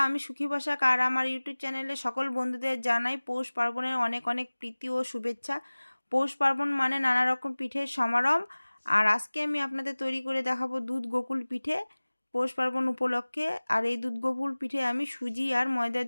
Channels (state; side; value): inverted; both; correlation -1.00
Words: আমি সুখী বসাক আর আমার ইউটিউব চ্যানেলে সকল বন্ধুদের জানাই পৌষ পার্বণের অনেক অনেক প্রীতি ও শুভেচ্ছা। পৌষ পার্বণ মানে নানা রকম পিঠের সমারোহ। আর আজকে আমি আপনাদের তৈরি করে দেখাবো দুধ গোকুল পিঠে পৌষ পার্বণ উপলক্ষে। আর এই দুধ গোকুল পিঠে আমি সুজি আর ময়দা